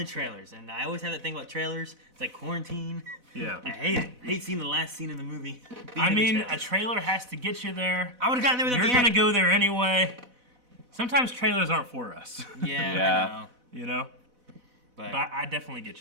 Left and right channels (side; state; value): left; late; 4.0 ms